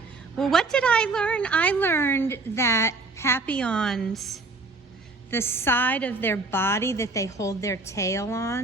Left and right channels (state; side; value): quieter; left; 3.6 dB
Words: Well, what did I learn? I learned that Papillons, the side of their body that they hold their tail